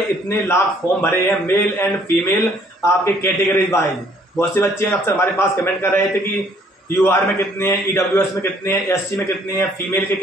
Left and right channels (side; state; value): both; normal; correlation 0.62